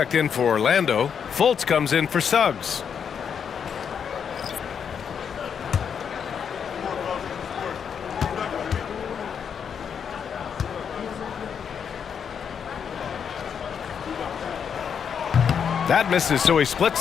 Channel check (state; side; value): quieter; right; 7.3 dB